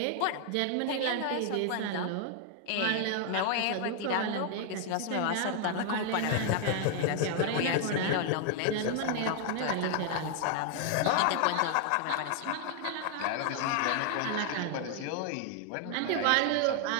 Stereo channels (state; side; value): different; both; correlation 0.00